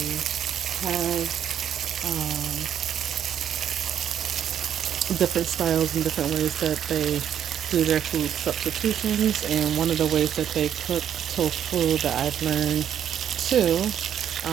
have different styles and different ways that they do their food substitutions. And one of the ways that they cook tofu that I've learned too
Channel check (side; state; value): left; quieter; 9.5 dB